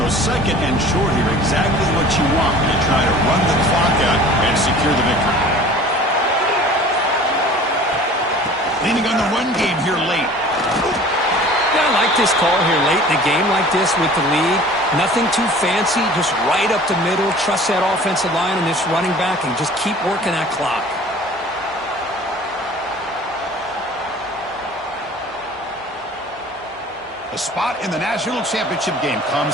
So 2nd and short here, exactly what you want when you try to run the clock out and secure the victory. Leaning on the run game here late. Yeah, I like this call here late in a game like this with the lead. Nothing too fancy, just right up the middle. Trust that offensive line and this running back and just keep working that clock. A spot in the national championship game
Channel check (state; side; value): normal; both; correlation 0.46